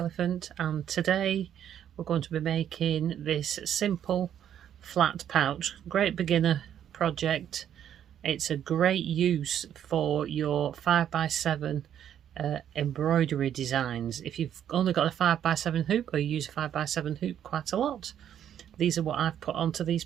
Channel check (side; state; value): left; quieter; 9.9 dB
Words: and today we're going to be making this simple flat pouch. Great beginner project. It's a great use for your 5x7 embroidery designs. If you've only got a 5x7 hoop or you use a 5x7 hoop quite a lot, these are what I've put onto these